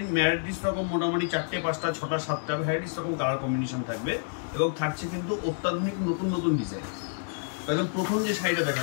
ভ্যারাইটিস রকম মোটামুটি 4টে 5টা 6টা 7টা ভ্যারাইটিস রকম কালার কম্বিনেশন থাকবে, এবং থাকছে কিন্তু অত্যাধুনিক নতুন নতুন ডিজাইন। একদম প্রথম যে শাড়িটা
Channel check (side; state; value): right; silent; digital silence